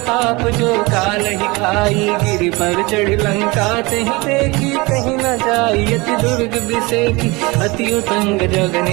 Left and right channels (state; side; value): quieter; left; 24.5 dB